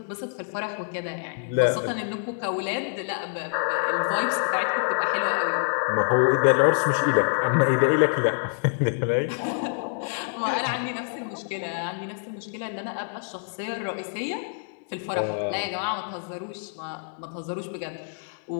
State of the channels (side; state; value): right; silent; digital silence